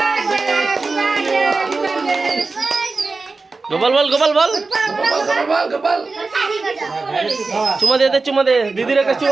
Gopal বল, গোপাল বল, গোপাল চুমা দে দিদির একটা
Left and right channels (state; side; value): quieter; left; 3.9 dB